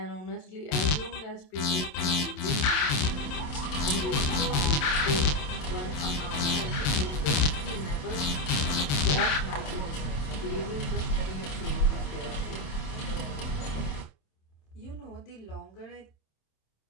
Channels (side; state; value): right; late; 27 ms